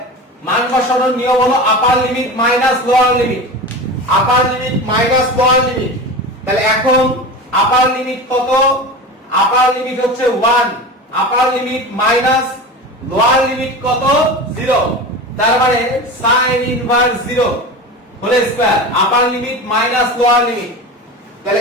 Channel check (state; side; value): normal; both; correlation 0.30